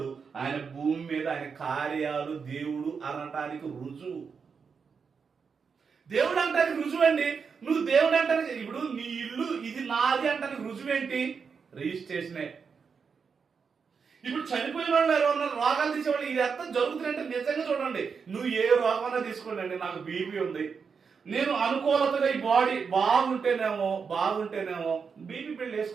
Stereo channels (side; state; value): left; quieter; 5.8 dB